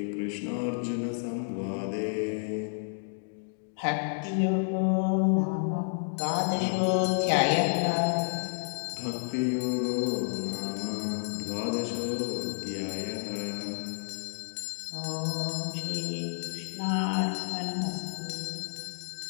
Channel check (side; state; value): right; silent; digital silence